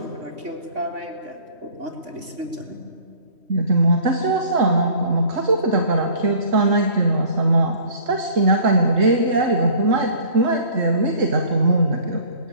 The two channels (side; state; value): left; late; 3.1 ms